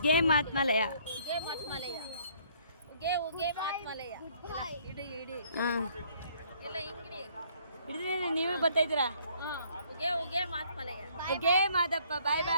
ಮಾತ್ಮಲಯ. ಹಿಡಿದ್ರೆ ನೀವೇ ಬರ್ತಾ ಇದ್ದೀರಾ? ಉಗ್ಗೆ ಮಾದಪ್ಪ. ಬಾಯ್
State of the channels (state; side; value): inverted; both; correlation -0.62